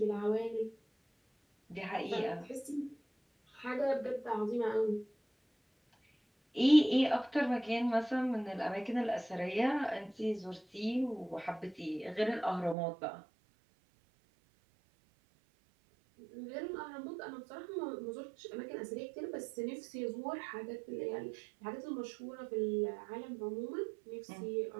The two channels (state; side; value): drops out; left; at 12.8 s